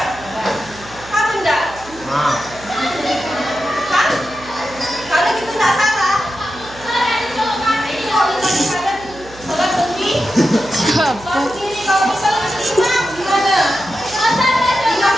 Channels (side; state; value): right; noise; hum, 19 dB below the sound